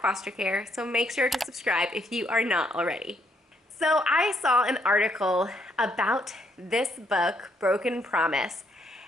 foster care, so make sure to subscribe if you are not already. So I saw an article about this book, Broken Promise,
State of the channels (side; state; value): both; normal; correlation 0.72